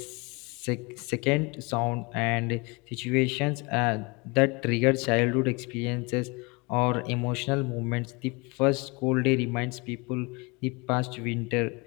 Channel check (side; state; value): right; quieter; 28.1 dB